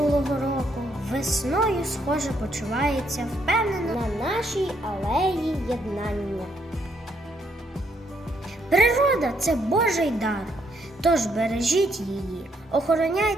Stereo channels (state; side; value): normal; both; correlation 0.73